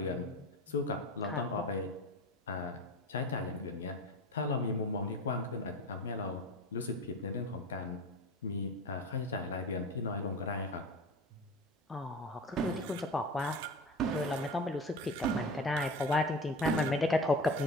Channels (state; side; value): normal; both; correlation 0.31